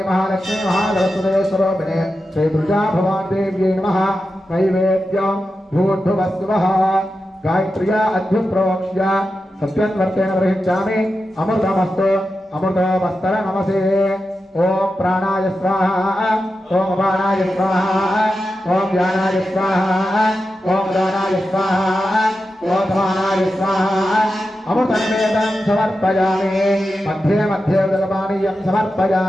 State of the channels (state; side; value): normal; both; correlation 0.91